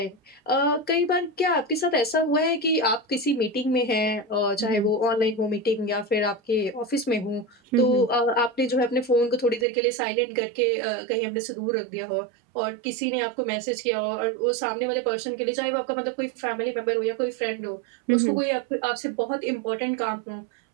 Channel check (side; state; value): left; drops out; at 9.7 s